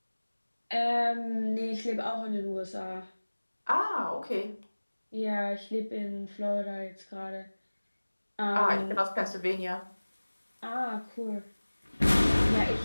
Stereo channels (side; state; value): both; inverted; correlation -1.00